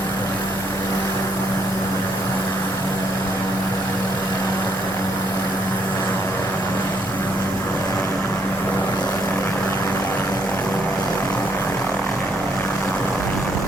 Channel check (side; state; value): both; normal; correlation 0.71